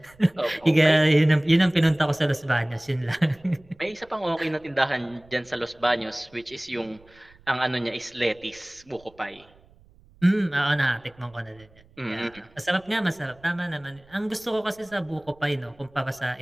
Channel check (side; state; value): right; noise; rumble, 28 dB below the sound